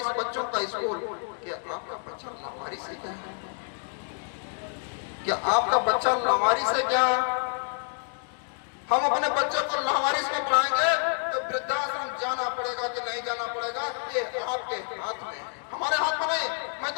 बच्चों का स्कूल। क्या आपका बच्चा लावारिस है? क्या आपका बच्चा लावारिस है? क्या हम अपने बच्चों को लावारिस में पढ़ाएंगे तो वृद्धाश्रम जाना पड़ेगा कि नहीं जाना पड़ेगा, ये आपके हाथ में, हमारे हाथ में नहीं। मैं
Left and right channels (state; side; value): silent; right; 59 dB below the other